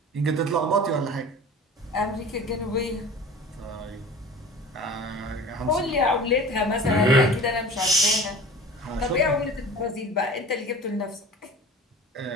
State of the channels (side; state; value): both; normal; correlation 0.39